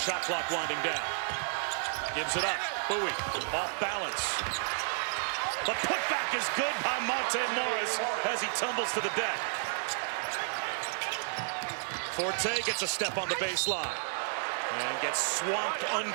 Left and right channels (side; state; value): left; silent; digital silence